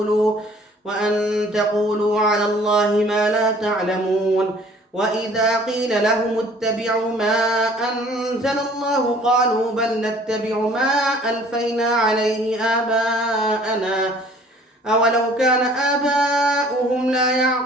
وأن تقولوا على الله ما لا تعلمون وإذا قيل لهم اتبعوا ما أنزل الله قالوا بل نتبع ما ألفينا عليه آباءنا أولو كان آباؤهم لا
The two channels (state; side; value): normal; both; correlation 0.53